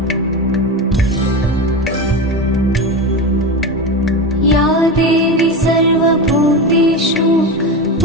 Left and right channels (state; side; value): normal; both; correlation 0.21